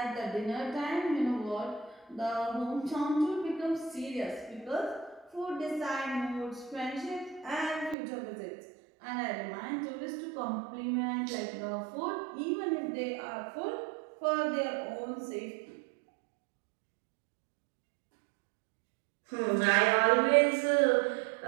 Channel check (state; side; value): drops out; left; at 8.0 s